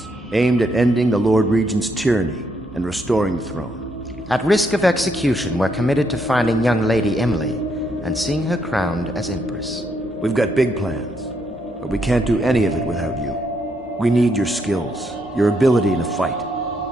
aimed at ending the Lord Regent's tyranny and restoring the throne. At risk of execution, we're committed to finding young Lady Emily and seeing her crowned as Empress. We've got big plans, but we can't do any of it without you. We need your skills, your ability in a fight,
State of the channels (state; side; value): normal; both; correlation 0.75